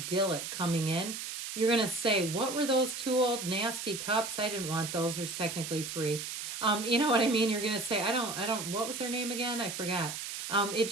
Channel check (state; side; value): noise; right; hiss, 6 dB below the sound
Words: coming in. You're going to say, what were those two old nasty cups? I didn't want those. There's technically three. You know what I mean? You're going to say, what was their name again? I forgot. It